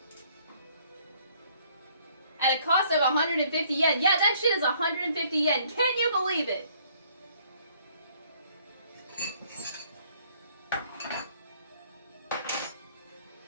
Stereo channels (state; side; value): inverted; both; correlation -0.62